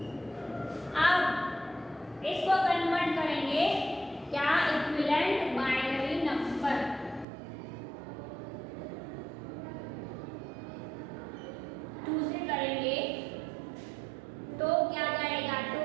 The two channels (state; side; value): drops out; left; at 7.2 s